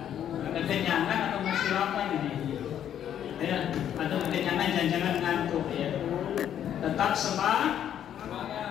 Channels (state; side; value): quieter; right; 10.1 dB